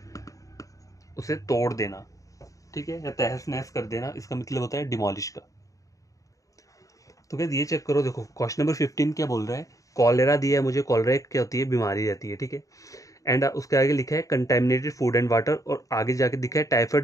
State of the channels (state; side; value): late; right; 0.16 ms